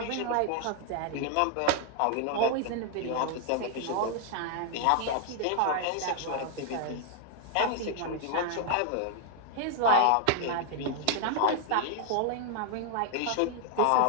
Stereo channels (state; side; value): different; both; correlation 0.00